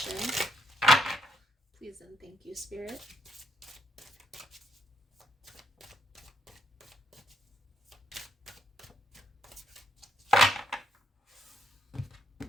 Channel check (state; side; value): normal; both; correlation 0.76